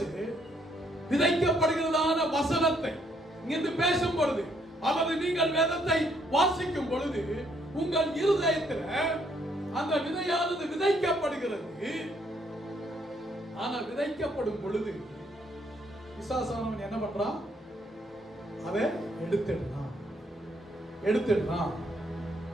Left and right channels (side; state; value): both; normal; correlation 0.70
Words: விதைக்கப்படுகிறதான வசனத்தை இங்கிருந்து பேசும் பொழுது அல்லது நீங்கள் வேதத்தை வாசிக்கும் பொழுது உங்கள் இருதயத்தில் அந்த விதையானது விதைக்கப்படுகிறது. ஆனா விதைக்கப்படும் பொழுது பிசாசானவன் என்ன பண்றான்? அதை எடுத்துடுறான்.